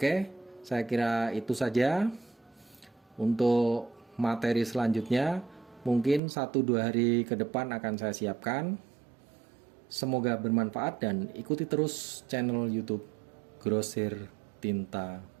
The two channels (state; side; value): drops out; left; at 6.2 s